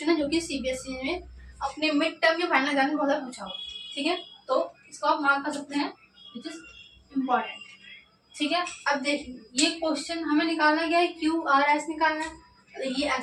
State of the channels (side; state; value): both; identical; correlation 1.00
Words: है जो कि सीबीएसई में अपने मिड टर्म या फाइनल एग्जाम में बहुत पूछा हुआ, ठीक है, तो इसको आप मार्क कर सकते हैं, विच इज इम्पोर्टेंट, ठीक है। अब देखिए ये क्वेश्चन हमें निकालना क्या है, क्यू आर एस निकालना है। ये